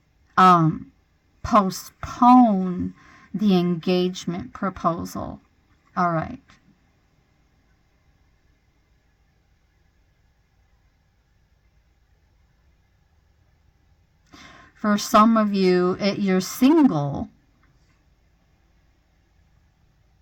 postpone the engagement proposal. All right. For some of you, you're single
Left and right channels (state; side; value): identical; both; correlation 1.00